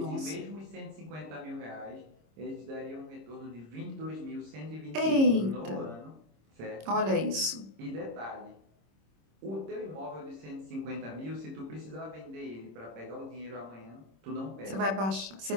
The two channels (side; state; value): left; late; 26 ms